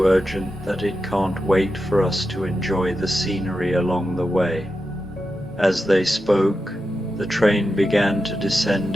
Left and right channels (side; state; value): both; normal; correlation 0.90